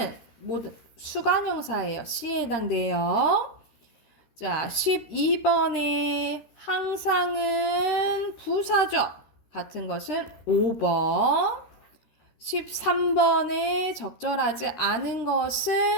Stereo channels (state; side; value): late; right; 13 ms